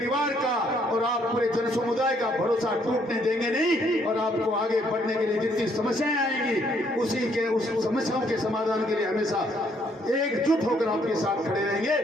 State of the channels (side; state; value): both; normal; correlation 0.68